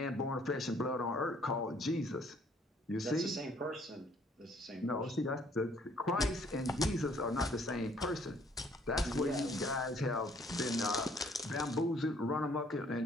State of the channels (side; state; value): both; normal; correlation 0.61